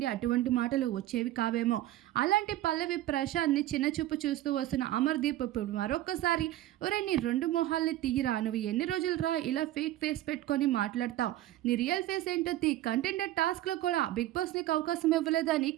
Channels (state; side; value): quieter; left; 14.7 dB